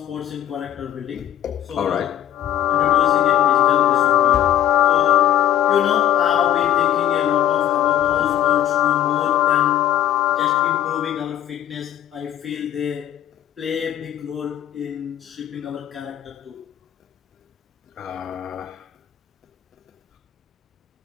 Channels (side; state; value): right; quieter; 11.5 dB